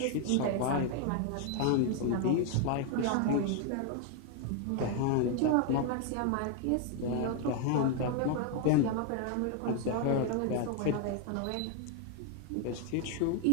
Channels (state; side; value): different; both; correlation 0.01